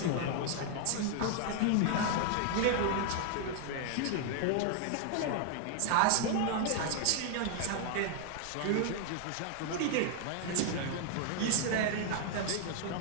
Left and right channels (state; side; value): different; both; correlation 0.00